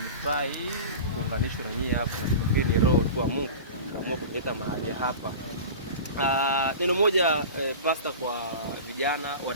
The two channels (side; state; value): both; inverted; correlation -0.33